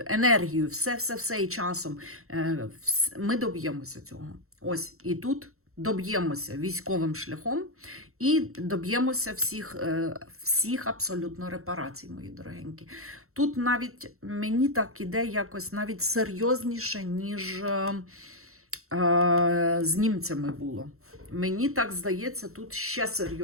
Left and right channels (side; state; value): left; late; 0.63 ms